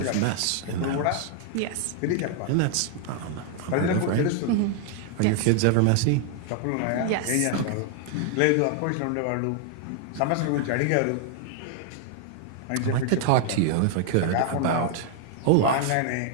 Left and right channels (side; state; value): both; different; correlation 0.00